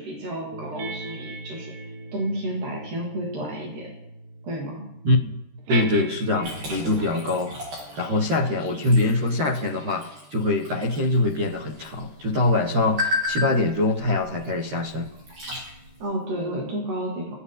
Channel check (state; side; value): late; left; 13 ms